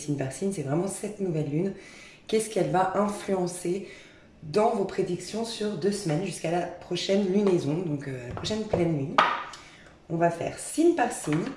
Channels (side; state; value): both; identical; correlation 1.00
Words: par signe, c'est vraiment cette nouvelle lune. Qu'est-ce qu'elle va influencer dans vos prédictions sur 2 semaines jusqu'à la prochaine lunaison, donc la prochaine pleine lune. On va faire signe par signe.